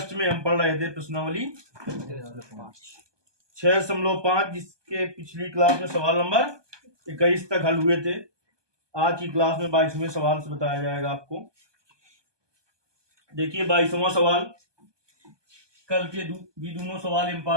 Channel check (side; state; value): left; late; 1.2 ms